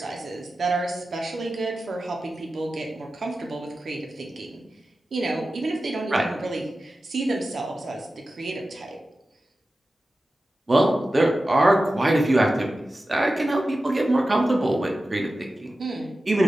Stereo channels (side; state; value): both; normal; correlation 0.94